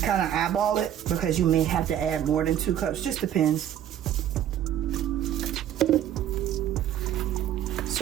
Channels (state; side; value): quieter; left; 10.8 dB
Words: kind of eyeball it because you may have to add more than 2 cups. Just depends.